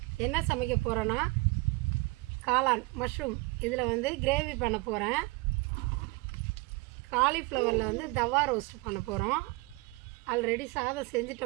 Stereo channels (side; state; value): left; quieter; 24.6 dB